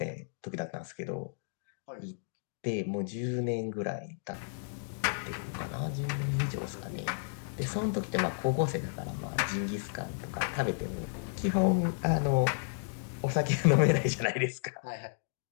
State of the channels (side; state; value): right; silent; digital silence